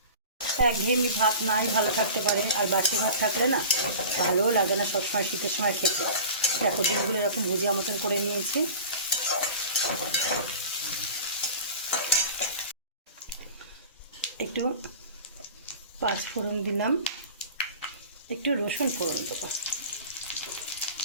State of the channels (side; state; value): both; inverted; correlation -0.38